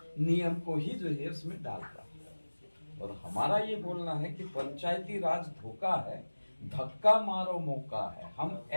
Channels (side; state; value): both; inverted; correlation -1.00